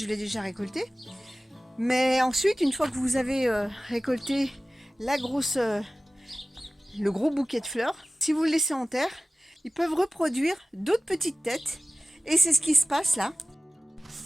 l'ai déjà récoltée. Mais ensuite, une fois que vous avez récolté le gros bouquet de fleurs, si vous le laissez en terre, ils peuvent reproduire d'autres petites têtes. Et c'est ce qui se passe là.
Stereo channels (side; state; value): both; normal; correlation 0.96